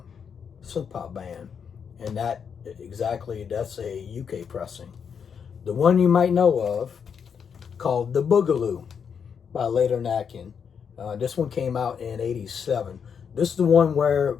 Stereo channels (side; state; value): right; quieter; 6.9 dB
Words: synth pop band, and that's a UK pressing. The one you might know of, called The Boogaloo by Later Neckin. This one came out in '87. This is the one where